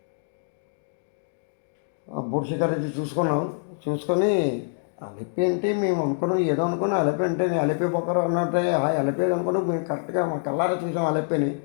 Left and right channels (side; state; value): right; silent; digital silence